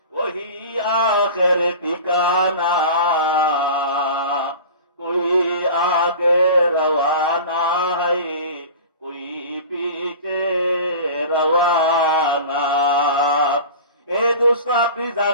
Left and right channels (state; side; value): inverted; both; correlation -0.36